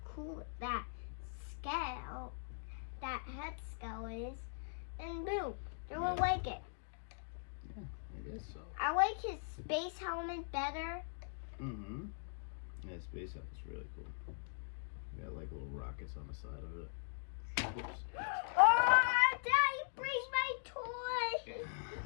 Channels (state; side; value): silent; right; digital silence